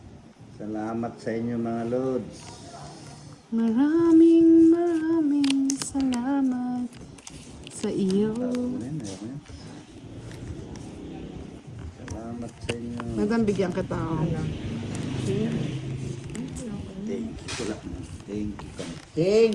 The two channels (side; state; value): both; identical; correlation 1.00